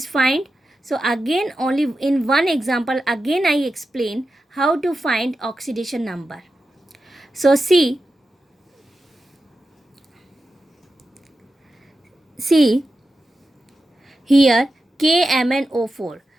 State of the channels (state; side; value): normal; both; correlation 0.91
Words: find. So again only in one example again I explain how to find oxidation number. So see here KMnO4.